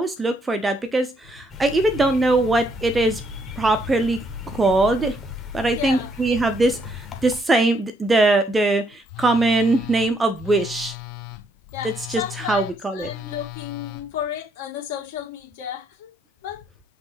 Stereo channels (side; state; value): both; normal; correlation 0.72